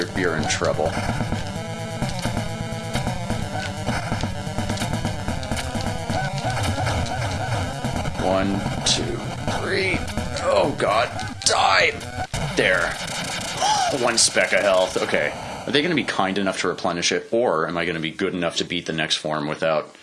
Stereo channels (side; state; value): both; identical; correlation 1.00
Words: in trouble. One, two, three. Oh god, die! There. One speck of health. Okay. Are they going to be kind enough to replenish it, or am I going to be good enough to beat the next form without